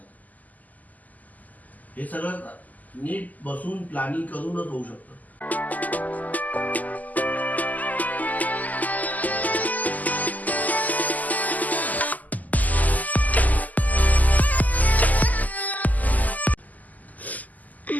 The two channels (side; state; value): right; late; 0.080 ms